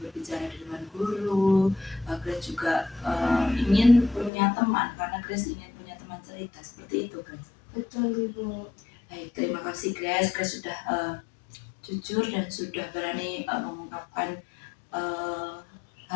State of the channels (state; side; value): drops out; right; at 4.3 s